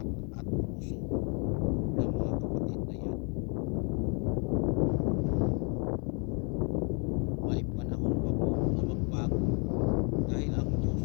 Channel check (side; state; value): right; quieter; 36.2 dB